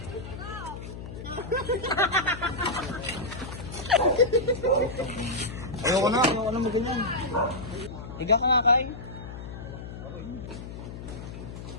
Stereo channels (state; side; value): noise; left; hum, 10 dB below the sound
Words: Ayoko na mo ganyan. Higa ka nga, Kai.